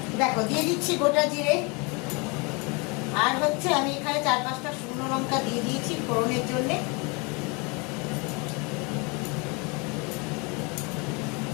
দেখো দিয়ে দিচ্ছি গোটা জিরে, আর হচ্ছে আমি এখানে 4-5টা শুকনো লঙ্কা দিয়ে দিয়েছি ফোড়নের জন্য।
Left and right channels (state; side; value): quieter; right; 30.1 dB